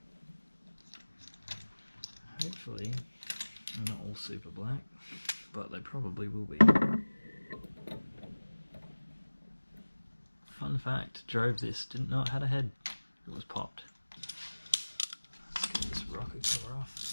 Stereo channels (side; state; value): both; inverted; correlation -1.00